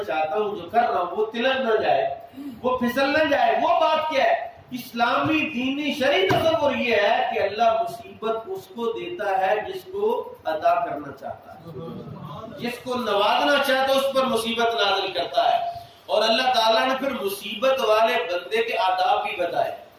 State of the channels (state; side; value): identical; both; correlation 1.00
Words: چاہتا ہوں، جو کر رہا ہوں، وہ تلک نہ جائے، وہ پھسل نہ جائے۔ وہ بات کیا ہے؟ اسلامی دینی شرعی تصور یہ ہے کہ اللہ مصیبت اس کو دیتا ہے جس کو عطا کرنا چاہتا ہے، جس کو نوازنا چاہتا ہے اس پر مصیبت نازل کرتا ہے۔ اور اللہ تعالیٰ نے پھر مصیبت والے بندے کے آداب بھی بتائے،